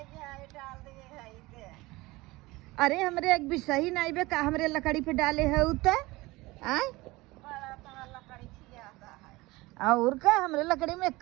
जाए डाल दे है के अरे हमरे एक भी सही नहीं बे का हमरे लकड़ी पे डाले है उता आय बड़ा तो हर लकड़ी खियाता है और का हमरे लकड़ी में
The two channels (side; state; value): left; quieter; 21.0 dB